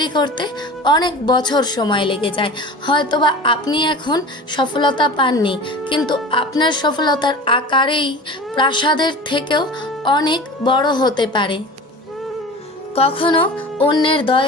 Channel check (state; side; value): normal; both; correlation 0.36